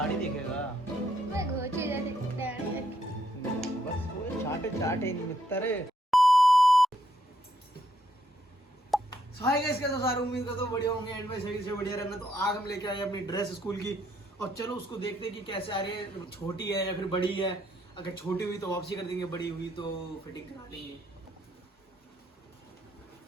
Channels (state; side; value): normal; both; correlation 0.74